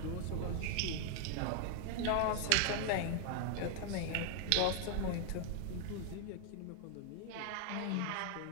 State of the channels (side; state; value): both; different; correlation 0.00